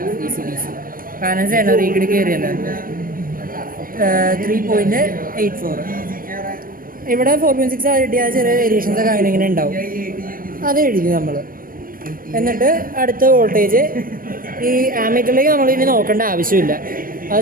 DC കാരണം സെനറി കൂടി കയറിയല്ലോ. 3.84. ഇവിടെ 4.6 കിട്ടിയാൽ ചെറിയ വേരിയേഷൻസ് ഒക്കെ അങ്ങനെ ഇങ്ങനെ ഉണ്ടാവും. അത് എഴുതി നമ്മൾ. എന്നിട്ട് അടുത്ത വോൾട്ടേജ് ഈ ആമീറ്ററിലേക്ക് നമ്മൾ ഇനി നോക്കേണ്ട ആവശ്യമില്ല. അത്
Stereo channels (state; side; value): late; left; 0.41 ms